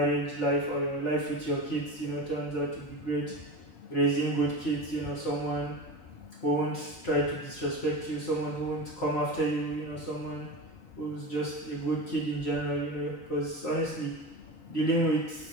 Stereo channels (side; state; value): right; late; 3.9 ms